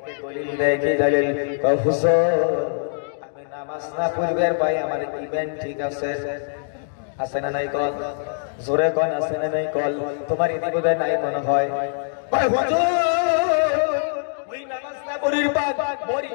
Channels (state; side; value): silent; right; digital silence